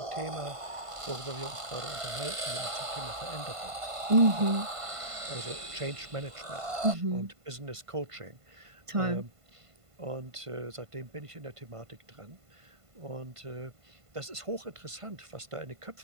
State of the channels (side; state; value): left; late; 1.5 ms